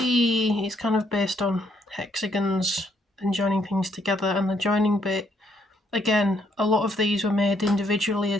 it's kind of based on hexagons and joining things together, and the joining bit, again, a lot of these were made individually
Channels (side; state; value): both; normal; correlation 0.72